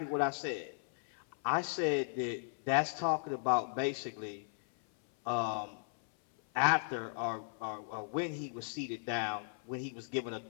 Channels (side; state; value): right; silent; 54 dB below the other